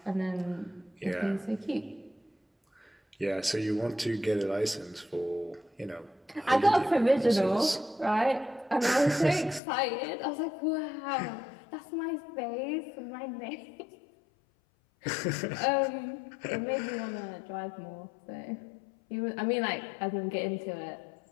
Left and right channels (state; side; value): drops out; right; at 9.6 s